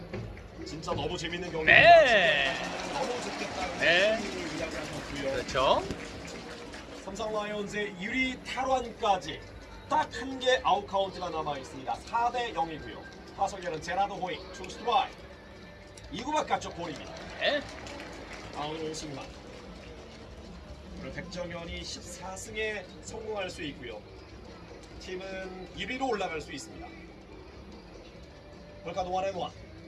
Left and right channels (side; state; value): both; identical; correlation 1.00